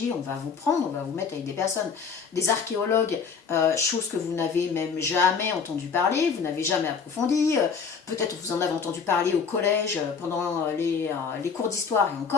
On va vous prendre, on va vous mettre avec des personnes, des archéologues, chose que vous n'avez même jamais entendu parler, vous n'avez jamais approfondi. Peut-être vous en avez entendu parler au collège pendant les cours d'histoire et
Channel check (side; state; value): right; quieter; 5.8 dB